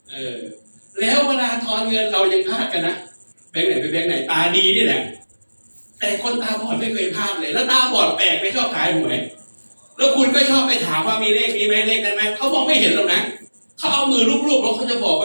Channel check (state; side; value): inverted; both; correlation -1.00